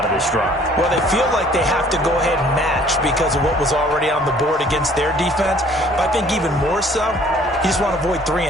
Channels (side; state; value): both; normal; correlation 0.56